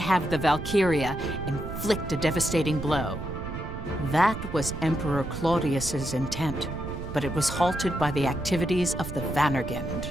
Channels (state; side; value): noise; right; rumble, 8 dB below the sound